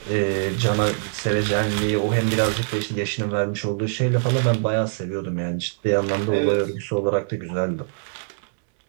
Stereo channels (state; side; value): silent; left; 63 dB below the other